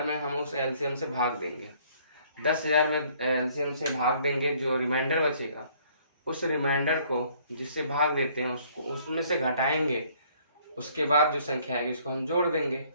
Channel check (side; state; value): both; inverted; correlation -0.61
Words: में हम उस एलसीएम से भाग देंगे। 10,000 में एलसीएम से भाग देंगे, जो रिमाइंडर बचेगा उस रिमाइंडर को जिससे भाग देते हैं उसको उसमें से घटाएंगे। उसके बाद जो संख्या आएगी उसको हम जोड़ देंगे,